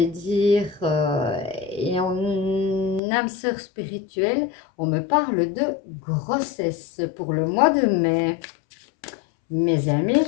dire, et en âme sœur spirituelle, on me parle de grossesse pour le mois de mai. Mes amis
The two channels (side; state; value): right; drops out; at 3.0 s